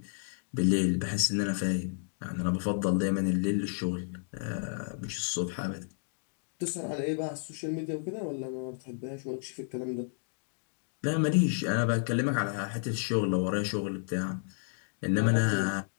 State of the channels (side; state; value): right; silent; digital silence